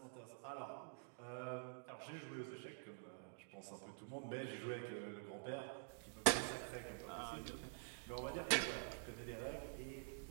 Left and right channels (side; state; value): left; silent; digital silence